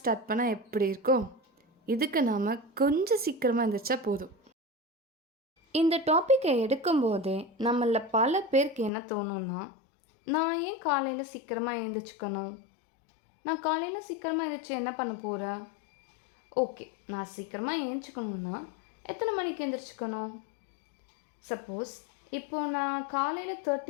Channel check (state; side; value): drops out; right; at 8.9 s